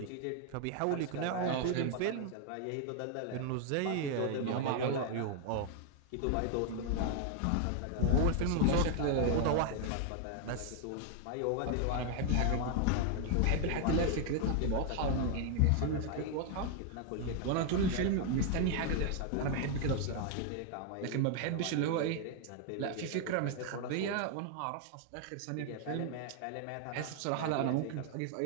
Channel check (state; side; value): different; both; correlation 0.00